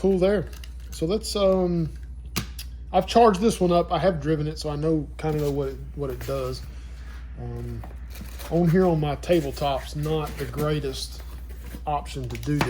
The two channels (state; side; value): identical; both; correlation 1.00